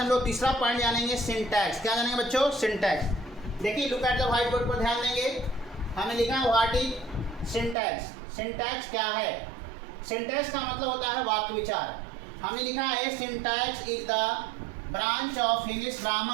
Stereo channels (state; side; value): drops out; left; at 7.8 s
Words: लोग तीसरा पॉइंट जानेंगे सिंटैक्स। क्या जानेंगे बच्चों? सिंटैक्स। देखिए look at the white board पर ध्यान देंगे। हमें लिखा है व्हाट इज सिंटैक्स। सिंटैक्स क्या है? सिंटैक्स का मतलब होता है वाक्य विचार। हमने लिखा है syntax is the branch of English